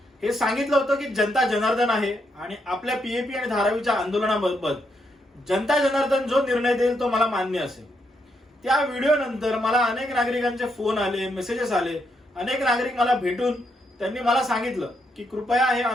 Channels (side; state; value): both; normal; correlation 0.79